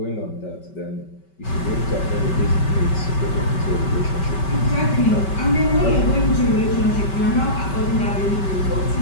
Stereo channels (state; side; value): late; right; 5.2 ms